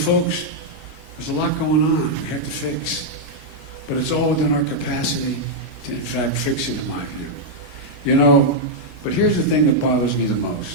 there's a lot going on we have to fix. But it's all within our capacity to, in fact, fix it, in my view. But here's the thing that bothers me the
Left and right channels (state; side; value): late; left; 1.4 ms